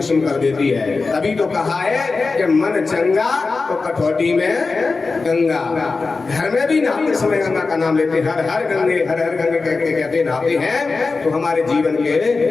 कर देती है। तभी तो कहा है कि मन चंगा तो कठौती में गंगा। घर में भी नहाते समय गंगा का नाम लेते, हर हर गंगे कहते नहाते हैं तो हमारे जीवन के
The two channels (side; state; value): right; quieter; 4.1 dB